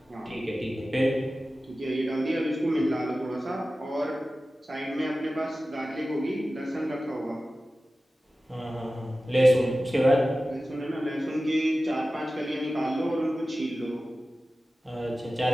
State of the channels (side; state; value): both; normal; correlation 0.95